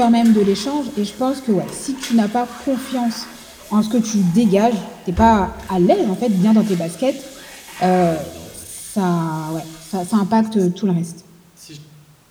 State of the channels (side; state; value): both; identical; correlation 1.00